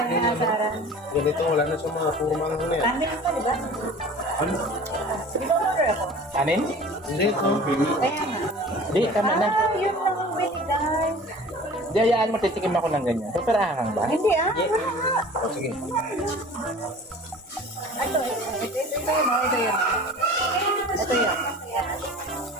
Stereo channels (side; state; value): both; normal; correlation 0.42